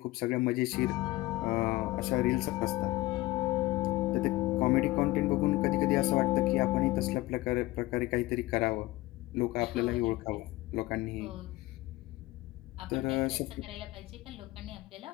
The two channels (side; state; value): right; quieter; 19.2 dB